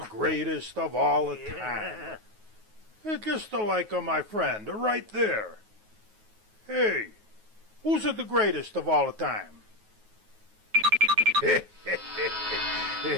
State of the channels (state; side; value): late; left; 9.4 ms